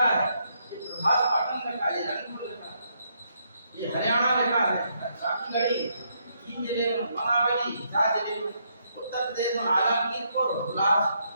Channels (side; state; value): both; inverted; correlation -0.76